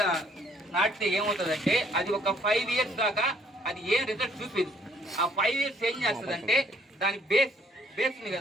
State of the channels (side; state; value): both; normal; correlation 0.63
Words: నాటితే ఏమవుతుందంటే అది ఒక 5 years దాకా అది ఏం రిజల్ట్ చూపేది. ఆ 5 years ఏం చేస్తుందంటే దాని బేస్ ఉంది